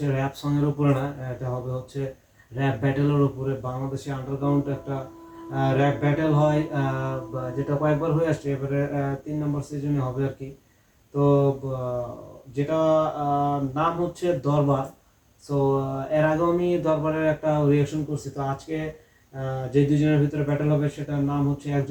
র‍্যাপ সং এর উপরে না, এটা হবে হচ্ছে র‍্যাপ ব্যাটেলের উপরে। বাংলাদেশে আন্ডারগ্রাউন্ড একটা র‍্যাপ ব্যাটেল হয়, যেটা কয়েকবার হয়ে আসছে, এবারে 3 নম্বর সিজনে হবে আর কি। তো যেটা নাম হচ্ছে দরবার। সো এর আগে আমি দরবারের একটা রিঅ্যাকশন করছি। তো আজকে যে দুজনের ভিতরে ব্যাটেল হবে সেটার নাম হচ্ছে,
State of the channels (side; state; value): both; identical; correlation 1.00